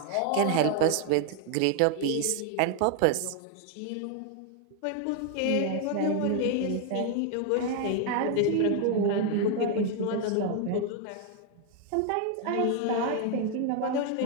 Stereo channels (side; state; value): both; different; correlation 0.00